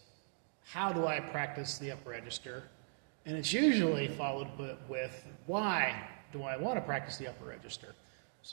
how do I practice the upper register? And it's usually followed with, why do I want to practice the upper register?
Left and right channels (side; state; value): left; silent; digital silence